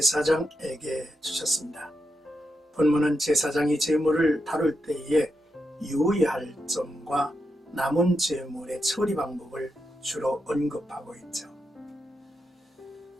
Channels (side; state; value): both; normal; correlation 0.85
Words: 주셨습니다. 본문은 제사장이 제물을 다룰 때에 유의할 점과 남은 제물의 처리 방법을 주로 언급하고 있죠.